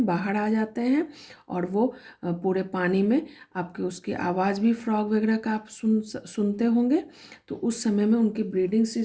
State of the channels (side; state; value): both; identical; correlation 1.00